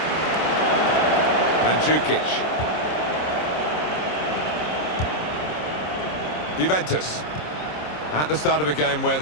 Mandzukic. Juventus at the start of a game where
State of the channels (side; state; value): right; late; 26 ms